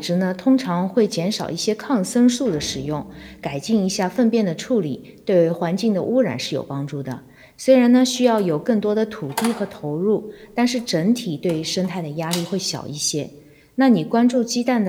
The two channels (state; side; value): identical; both; correlation 1.00